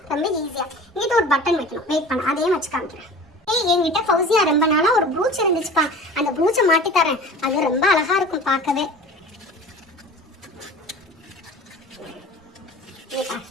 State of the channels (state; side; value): normal; both; correlation 0.40